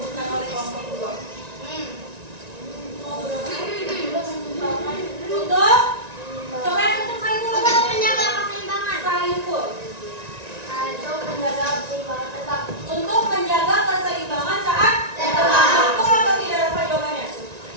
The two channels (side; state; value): left; late; 1.9 ms